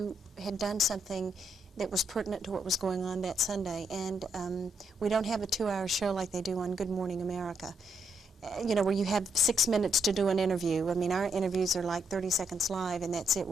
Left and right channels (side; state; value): both; normal; correlation 0.77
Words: had done something that was pertinent to what was going on that Sunday. And we don't have a 2-hour show like they do on Good Morning America, you know, where you have 6 minutes to do an interview. I mean, our interviews are like 30 seconds live, and that's it,